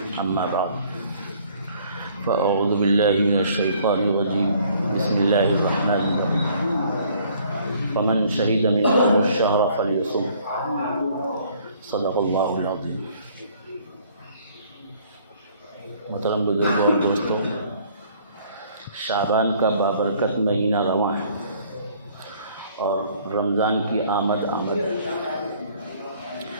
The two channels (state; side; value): inverted; both; correlation -0.59